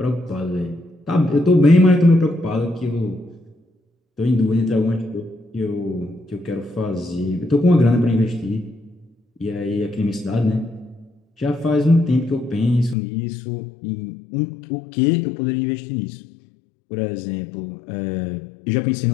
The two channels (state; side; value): drops out; right; at 13.0 s